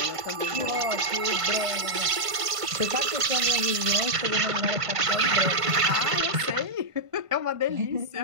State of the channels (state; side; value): late; left; 1.5 ms